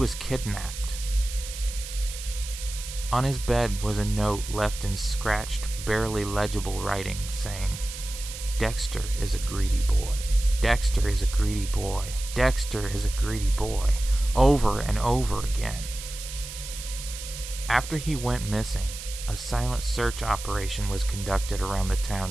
kidnapped. On his bed was a note left in scratched, barely legible writing saying, "Dexter is a greedy boy. Dexter is a greedy boy. Dexter is a greedy boy," over and over again. After he went missing, a silent search operation was conducted around the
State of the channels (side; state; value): right; noise; hiss, 10 dB below the sound